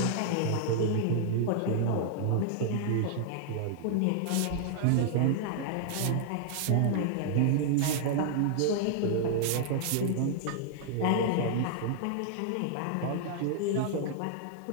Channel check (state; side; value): different; both; correlation -0.01